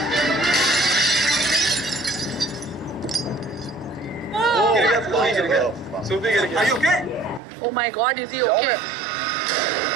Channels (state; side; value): drops out; left; at 7.4 s